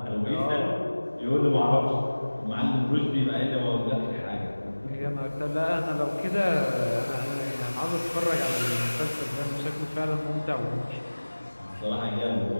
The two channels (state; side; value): inverted; both; correlation -1.00